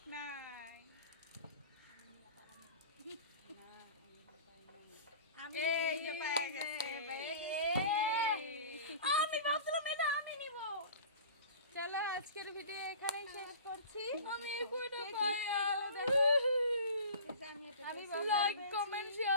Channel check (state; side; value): inverted; both; correlation -0.40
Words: নাই আমি এই যে পেয়ে গেছি। আমি ভাবছিলাম এটা আমি নিব। চলো আজকের ভিডিও এখানেই শেষ করছি। আমি কইটা কে কি পাই। আমি লাইক কমেন্ট